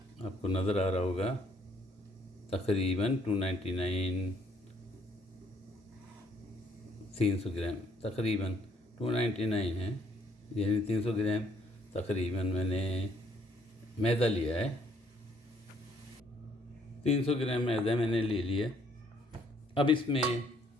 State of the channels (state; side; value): normal; both; correlation 0.66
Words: आपको नज़र आ रहा होगा, तकरीबन 299, 300 ग्राम तकरीबन 299 है, यानी 300 ग्राम तकरीबन मैंने मैदा लिया है। 300 ग्राम मैदा मैंने ले लिया। अब इसमें